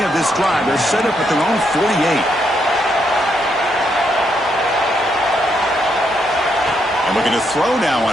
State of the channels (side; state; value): both; normal; correlation 0.77